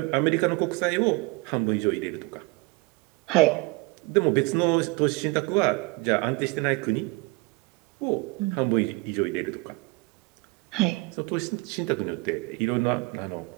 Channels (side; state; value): left; quieter; 25.2 dB